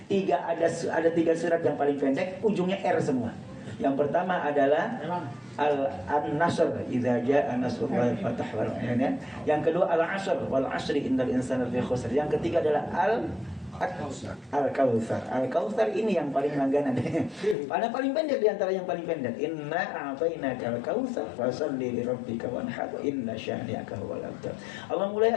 ada 3 surat yang paling pendek, ujungnya R semua. Yang pertama adalah An-Nasr, idza jaa nasrullahi wal fath wal ayat. Yang kedua Al-Asr, wal 'asri innal insana lafi khusr. Yang ketiga adalah Al-Kautsar. Al-Kautsar ini yang paling langganan. Pada paling pendek di antara yang paling pendek. Inna a'tainakal kautsar fasholli li rabbika wanhar inna syani'aka huwal abtar. Allah mulai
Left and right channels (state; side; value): drops out; right; at 17.6 s